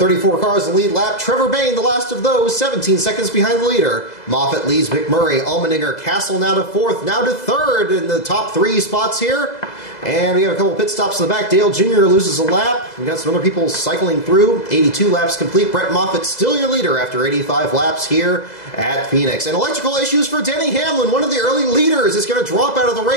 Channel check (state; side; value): late; right; 2.0 ms